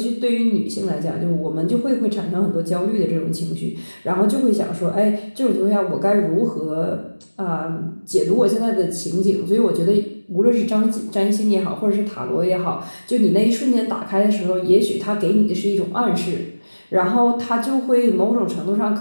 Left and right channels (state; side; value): inverted; both; correlation -1.00